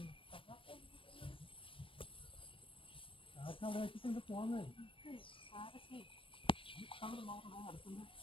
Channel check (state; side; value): late; right; 0.25 ms